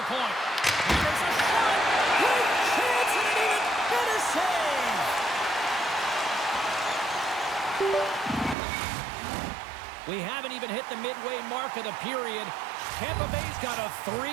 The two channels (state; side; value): drops out; left; at 8.6 s